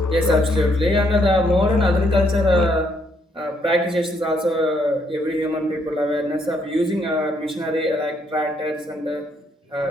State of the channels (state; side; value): normal; both; correlation 0.72